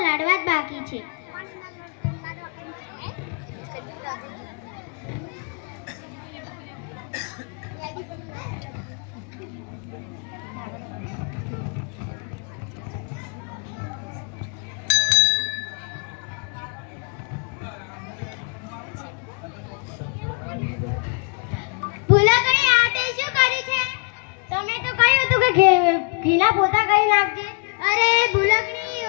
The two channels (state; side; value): quieter; right; 36.9 dB